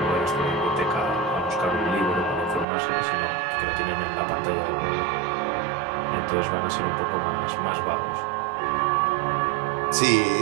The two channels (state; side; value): drops out; left; at 2.7 s